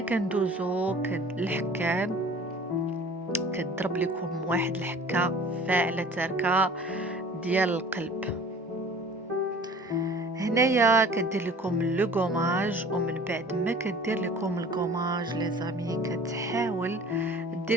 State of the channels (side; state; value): both; normal; correlation 0.46